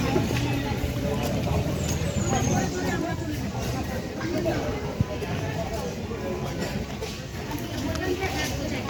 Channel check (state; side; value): identical; both; correlation 1.00